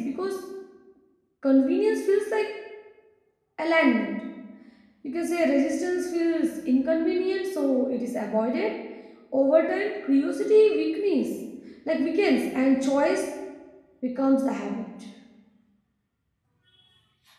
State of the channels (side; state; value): both; identical; correlation 1.00